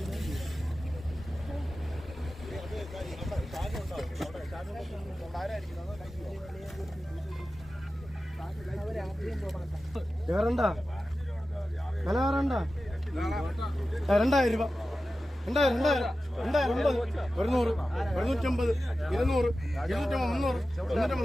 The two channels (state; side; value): normal; both; correlation 0.94